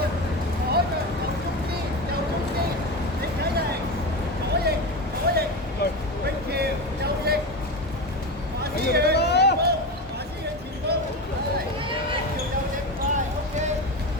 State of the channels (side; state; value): both; normal; correlation 0.21